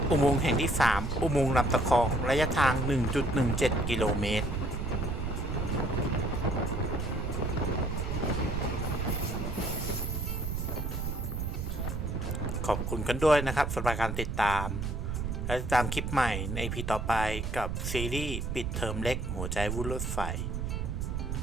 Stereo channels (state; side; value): noise; right; rumble, 2 dB below the sound